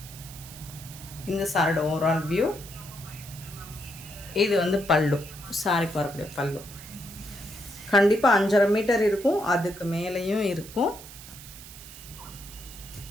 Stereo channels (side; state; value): right; noise; hiss, 15 dB below the sound